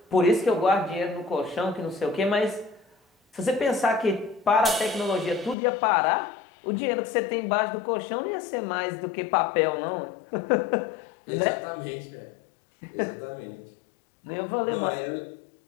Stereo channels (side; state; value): right; drops out; at 5.6 s